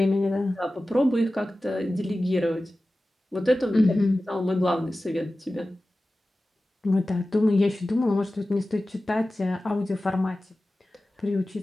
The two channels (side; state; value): both; normal; correlation 0.95